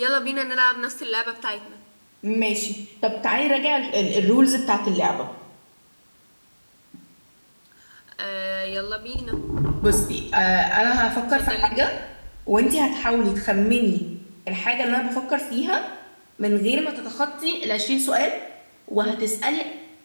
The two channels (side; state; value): both; inverted; correlation -1.00